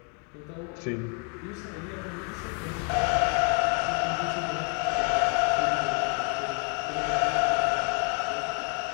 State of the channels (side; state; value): right; quieter; 35.2 dB